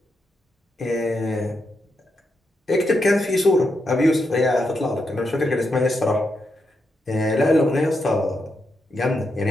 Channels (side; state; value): both; normal; correlation 0.84